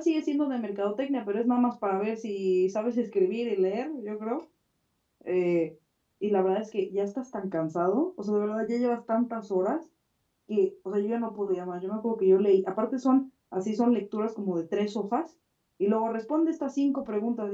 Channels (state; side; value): identical; both; correlation 1.00